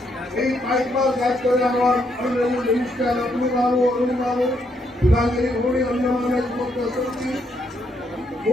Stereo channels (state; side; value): normal; both; correlation 0.75